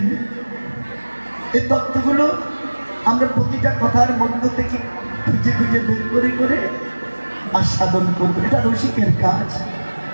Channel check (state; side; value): inverted; both; correlation -1.00